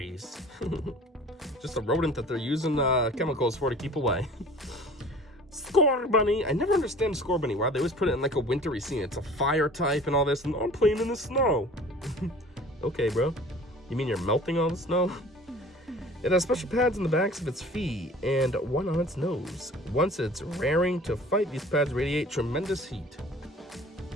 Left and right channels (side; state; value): both; normal; correlation 0.46